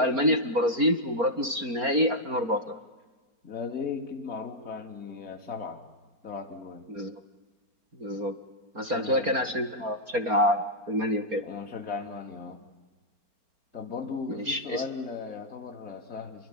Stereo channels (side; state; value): left; late; 4.3 ms